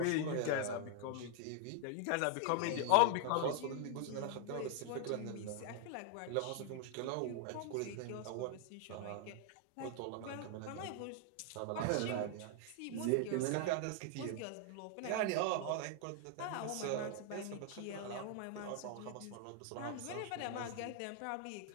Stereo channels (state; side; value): different; both; correlation 0.00